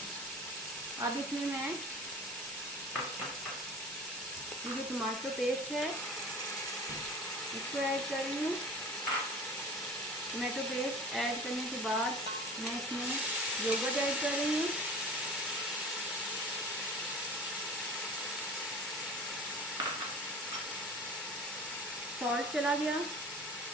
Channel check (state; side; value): normal; both; correlation 0.40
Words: अब इसमें मैं ये जो टमाटो पेस्ट है इसको ऐड कर रही हूँ। टमाटो पेस्ट ऐड करने के बाद मैं इसमें योगर्ट ऐड कर रही हूँ। सॉल्ट चला गया,